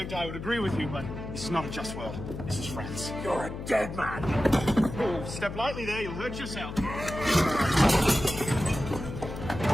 I would agree with you, but this is not a just world. This is France. You're a dead man. Oh, step lightly there. You'll hurt yourself.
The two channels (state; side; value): noise; left; hum, 8 dB below the sound